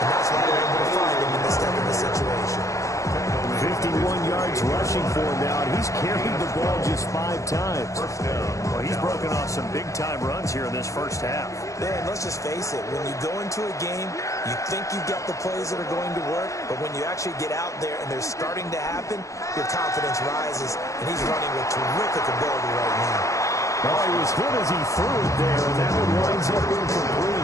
that's why they're able to find him in this type of a situation. 51 yards rushing for him now, and he's carried the ball just 5 times. Well, he's broken off some big-time runs here in this first half. Man, let's just face it. When you go into a game, you think you've got the plays that are going to work, but when you actually get out there and they're starting to happen, your confidence rises, and he's running with terrific ability right now. Oh, he was hit as he threw it there, and that one winds up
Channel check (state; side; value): late; right; 0.15 ms